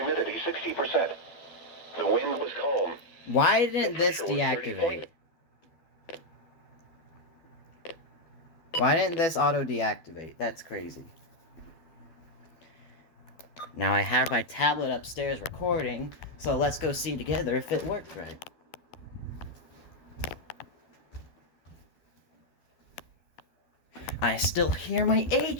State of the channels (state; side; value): late; right; 12 ms